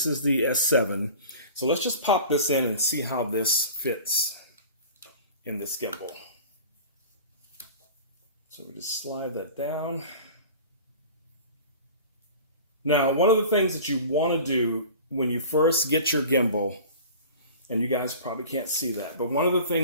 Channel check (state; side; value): inverted; both; correlation -0.40